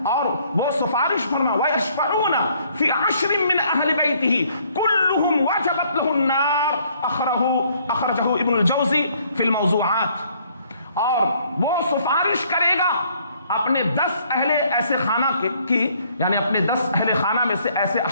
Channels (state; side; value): inverted; both; correlation -0.64